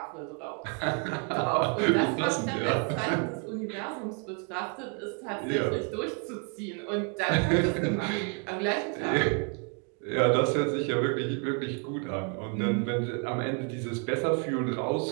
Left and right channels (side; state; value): left; quieter; 36.4 dB